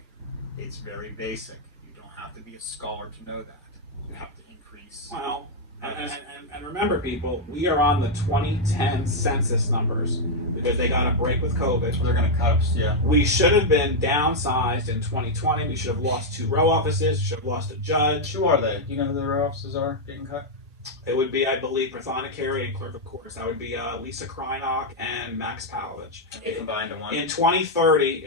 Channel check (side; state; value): both; normal; correlation -0.01